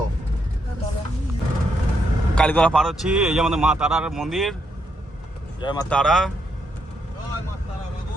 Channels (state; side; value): normal; both; correlation 0.77